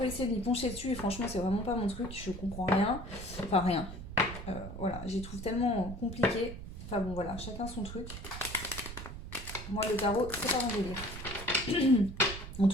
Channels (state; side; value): noise; right; rumble, 10 dB below the sound